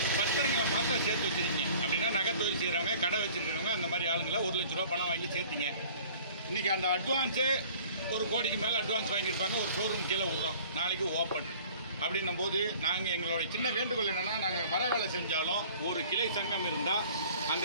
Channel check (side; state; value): both; inverted; correlation -0.49